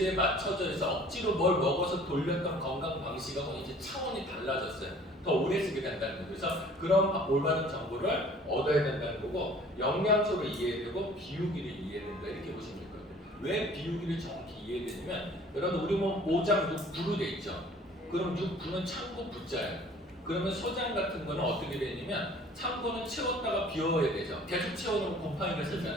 맞춰져 있어 억지로 뭘 먹어서 돌렸던 건강 방식하고 이제 차원이 달라졌어요. 더 오래 쓰게 된다는 거예요. 그래서 그런 올바른 정보를 얻어야 된다는 거고 영양소를 이해해야 되고 비우기를 이해해야 된다 이렇게 보시면 될 거예요. 왜 비우기를 정확히 이해해야 되냐면 여러분 우리 몸 오장 6부로 돼 있죠. 그럼 6부는 창고 부자예요. 그러면 소장 같은 거는 어떻게 되냐면 창고는 채웠다가 비워야 되죠. 계속 채워놓으면 곰팡이가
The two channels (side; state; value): both; normal; correlation 0.51